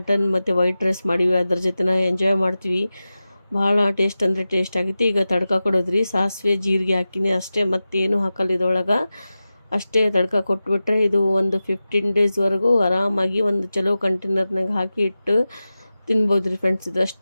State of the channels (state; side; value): inverted; both; correlation -0.94